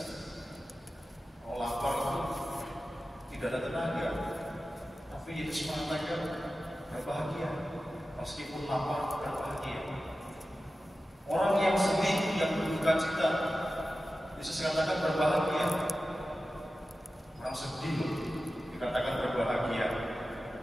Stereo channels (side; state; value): both; normal; correlation 0.94